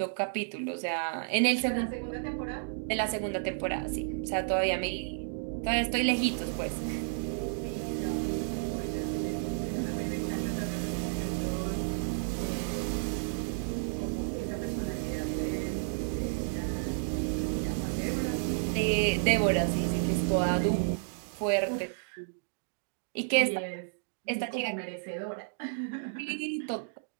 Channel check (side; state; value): left; silent; digital silence